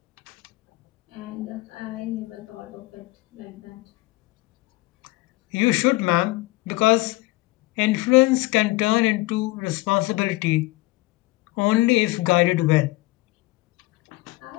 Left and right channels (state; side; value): quieter; right; 20.9 dB